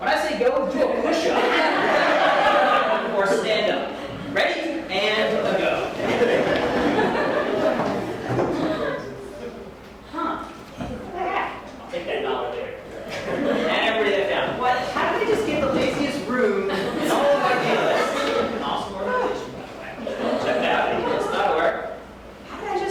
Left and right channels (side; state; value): both; identical; correlation 1.00